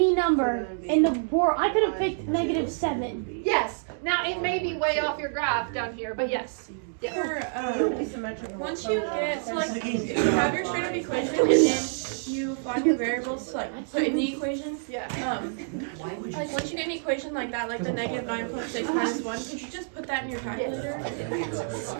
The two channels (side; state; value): left; silent; digital silence